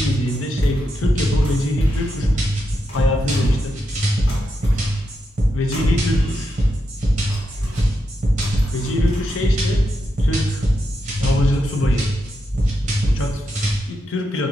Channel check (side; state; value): both; normal; correlation 0.84